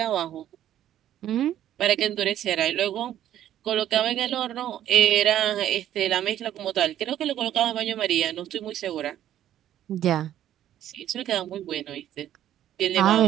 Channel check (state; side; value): quieter; left; 11.7 dB